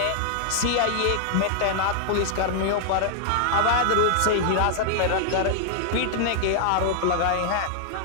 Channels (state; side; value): different; both; correlation -0.01